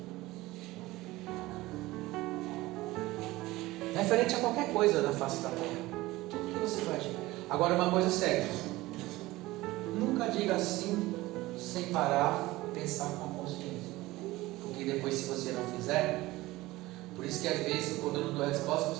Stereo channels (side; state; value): left; quieter; 18.8 dB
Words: Referente a qualquer coisa da face da terra. Tudo que você faz. Agora uma coisa séria. Nunca diga assim sem parar, pensar com a consciência. Porque depois, se você não fizer, por isso que às vezes quando eu não dou resposta,